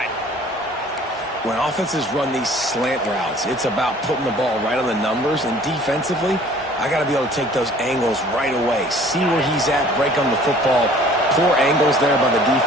When offenses run these slant routes, it's about putting the ball right on the numbers, and defensively, I got to be able to take those angles right away. See where he's at, break on the football. Poor angles there by the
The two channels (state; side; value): normal; both; correlation 0.52